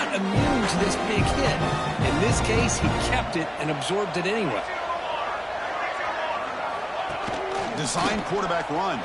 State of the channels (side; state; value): both; identical; correlation 1.00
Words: immune to this big hit. In this case, he kept it and absorbed it anyway. Design quarterback run.